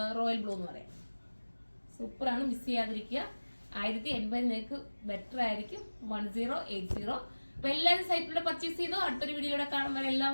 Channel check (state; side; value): inverted; both; correlation -1.00